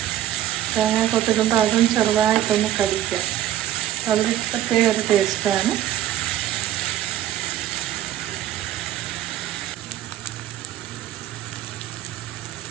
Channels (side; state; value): left; quieter; 12.3 dB